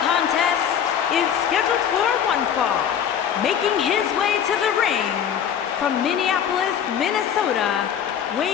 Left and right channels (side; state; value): right; quieter; 8.7 dB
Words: contest is scheduled for one fall. Making his way to the ring from Minneapolis, Minnesota,